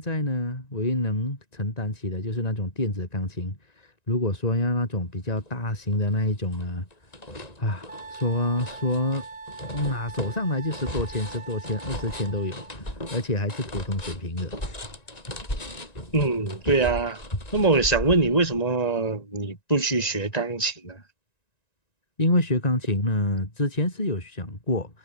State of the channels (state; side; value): late; right; 1.9 ms